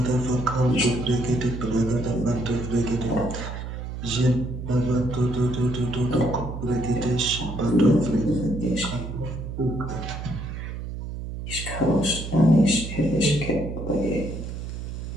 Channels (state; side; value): noise; right; hum, 7 dB below the sound